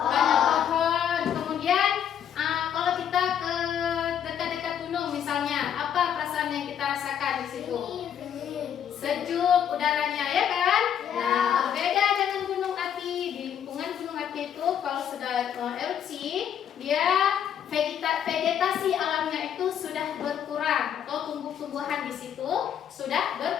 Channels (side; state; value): right; quieter; 9.1 dB